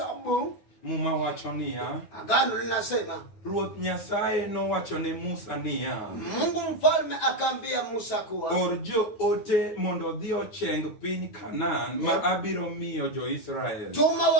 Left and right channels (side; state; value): right; late; 9.4 ms